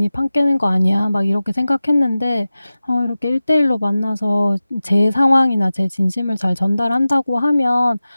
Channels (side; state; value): both; inverted; correlation -0.95